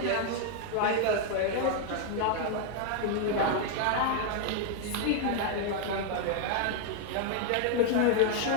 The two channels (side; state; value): both; different; correlation 0.01